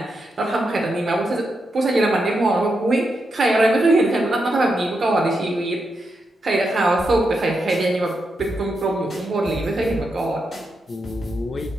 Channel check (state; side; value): normal; both; correlation 0.84